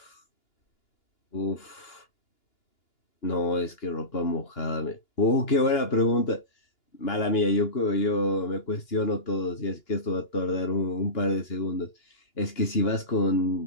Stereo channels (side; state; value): right; late; 2.9 ms